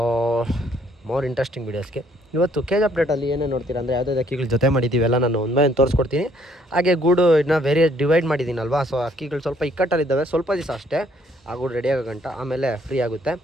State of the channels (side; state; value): both; normal; correlation 0.65